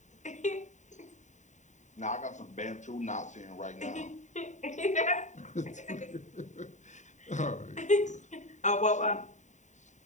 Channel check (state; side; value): late; right; 0.35 ms